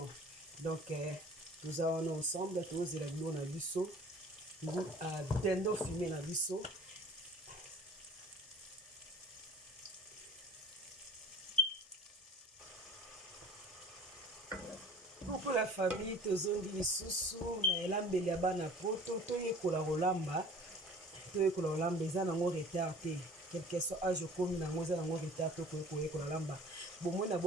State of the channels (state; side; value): normal; both; correlation 0.46